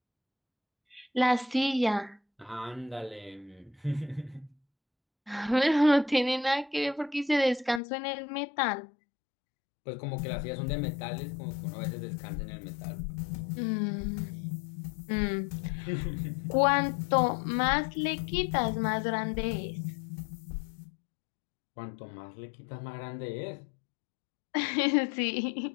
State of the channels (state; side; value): drops out; right; at 7.8 s